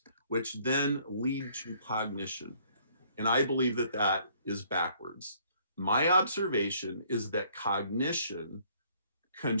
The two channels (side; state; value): both; inverted; correlation -0.62